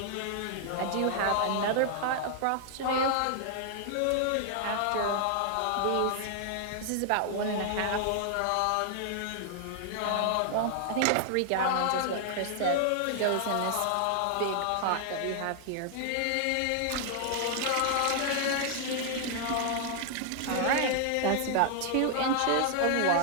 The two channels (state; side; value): different; both; correlation 0.00